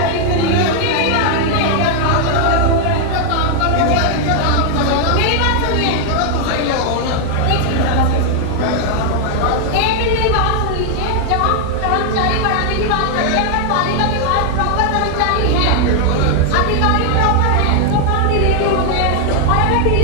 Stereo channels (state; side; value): different; both; correlation 0.00